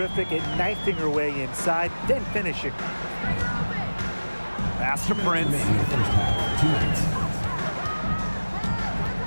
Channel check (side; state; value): both; inverted; correlation -1.00